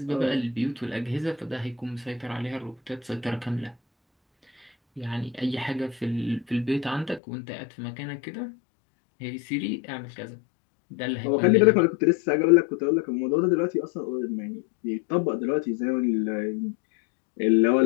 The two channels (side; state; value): right; drops out; at 7.2 s